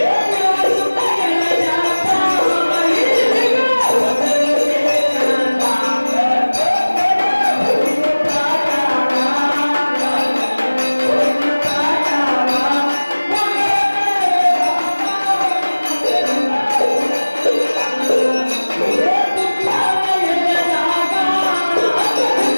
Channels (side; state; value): both; inverted; correlation -1.00